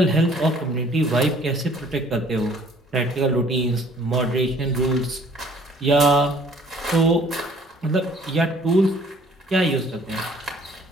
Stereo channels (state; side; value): normal; both; correlation 0.56